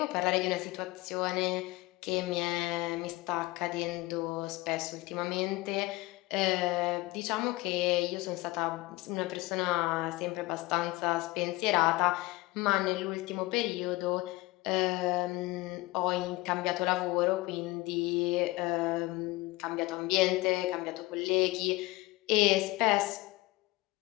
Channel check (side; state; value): right; quieter; 21.0 dB